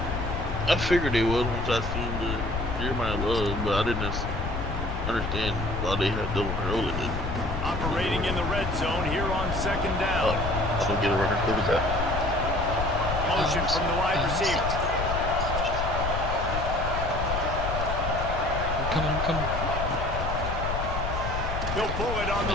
I figured they would once I seen the Jeremiah Love, but I didn't understand why they had double early. Operating in the red zone here on second Oh, down. I don't get a record. Look at that. Motion from the wide receiver. I'm coming, I'm coming. He'll pull it on the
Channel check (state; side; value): noise; left; rumble, 3 dB below the sound